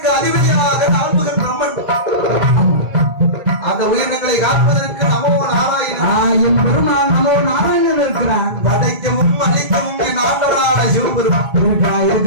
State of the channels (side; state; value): left; late; 1.8 ms